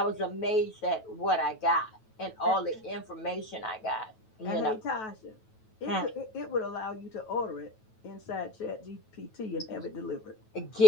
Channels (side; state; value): right; late; 9.2 ms